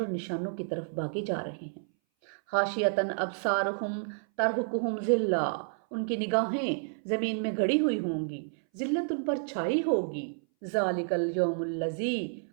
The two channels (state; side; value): silent; left; 58 dB below the other